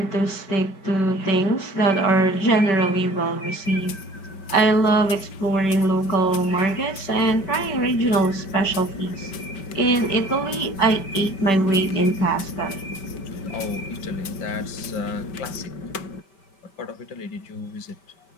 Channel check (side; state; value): right; late; 5.2 ms